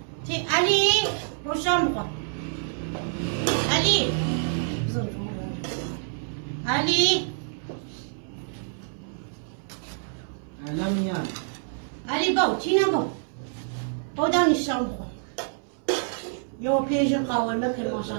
علی با شام بخور علی علی الان میاد علی با تینا با دانی شام بخور یو پیش قاورمه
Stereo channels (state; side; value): silent; left; 60 dB below the other